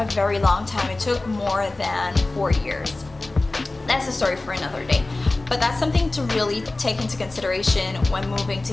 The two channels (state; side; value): quieter; right; 3.0 dB